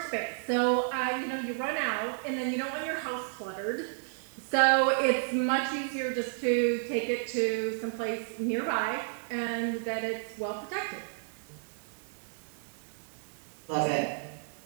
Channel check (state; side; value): silent; left; 57 dB below the other